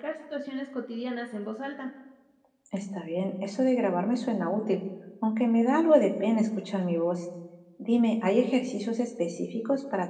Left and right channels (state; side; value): identical; both; correlation 1.00